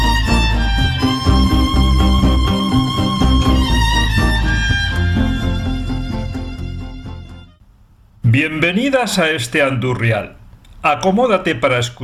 Bienvenidas a este Andurrial. Acomódate para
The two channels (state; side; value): identical; both; correlation 1.00